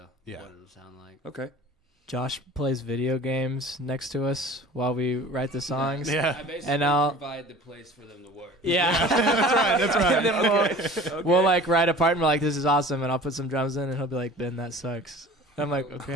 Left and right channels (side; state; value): both; normal; correlation 0.43